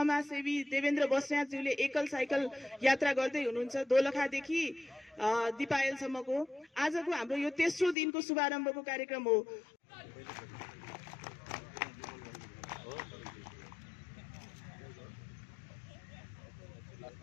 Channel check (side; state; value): right; drops out; at 8.0 s